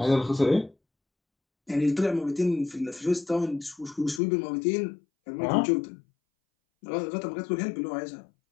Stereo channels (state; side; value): drops out; right; at 4.2 s